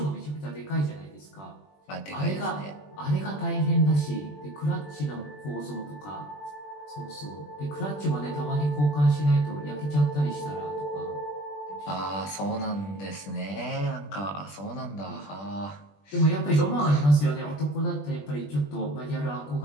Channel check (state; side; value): late; right; 20 ms